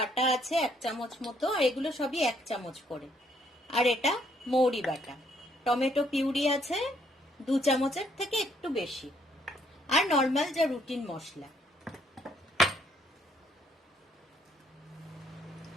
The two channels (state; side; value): normal; both; correlation 0.68